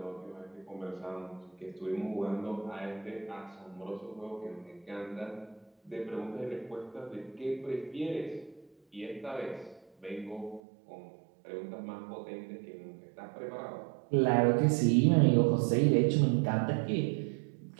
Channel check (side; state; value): left; drops out; at 10.6 s